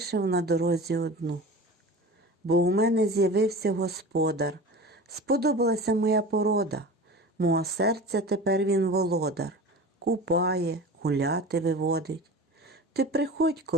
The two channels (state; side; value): normal; both; correlation 0.34